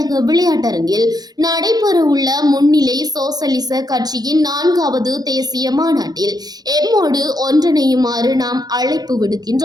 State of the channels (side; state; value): left; late; 0.19 ms